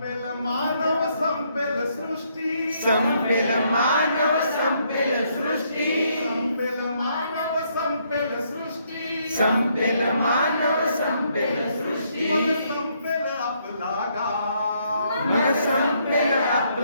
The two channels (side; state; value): both; inverted; correlation -0.72